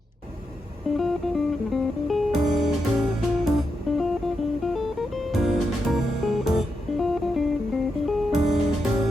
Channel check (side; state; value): both; normal; correlation 0.85